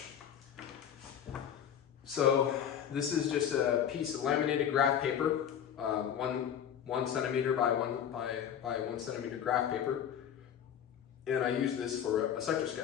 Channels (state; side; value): quieter; right; 9.1 dB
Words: So this is just a piece of laminated graph paper, 1 centimeter by 1 centimeter graph paper, and I use this for a sector